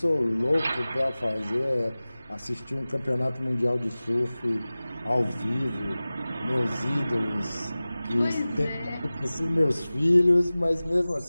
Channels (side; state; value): both; inverted; correlation -0.98